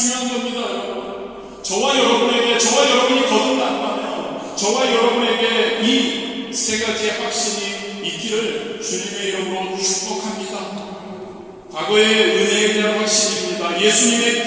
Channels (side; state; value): both; identical; correlation 1.00